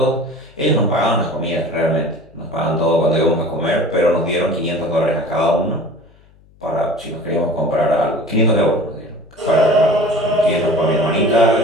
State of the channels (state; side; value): noise; left; hum, 29 dB below the sound